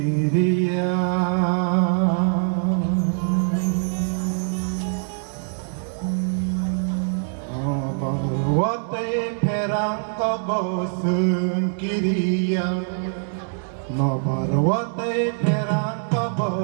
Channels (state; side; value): silent; left; digital silence